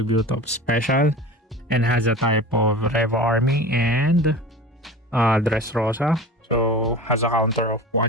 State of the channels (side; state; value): both; normal; correlation 0.35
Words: of special, and has a type of Revo army and Dressrosa. So has a counter of